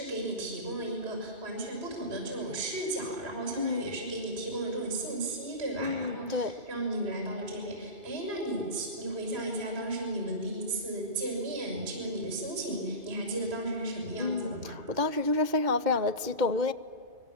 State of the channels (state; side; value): late; left; 2.5 ms